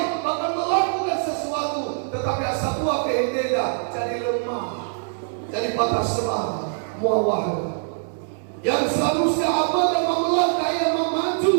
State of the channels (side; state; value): left; silent; 61 dB below the other